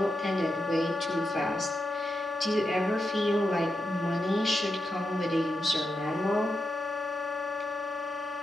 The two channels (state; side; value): normal; both; correlation 0.87